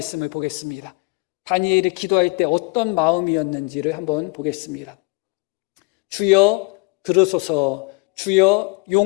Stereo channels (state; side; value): quieter; right; 29.8 dB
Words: 보겠습니다. 다니엘이 기도할 때 어떤 마음이었는지를 한번 보겠습니다. 주여 들으소서, 주여